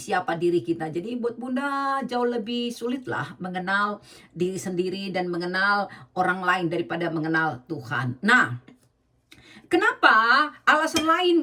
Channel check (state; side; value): identical; both; correlation 1.00